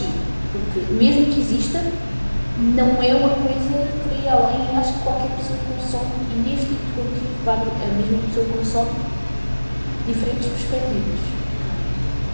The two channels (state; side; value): inverted; both; correlation -1.00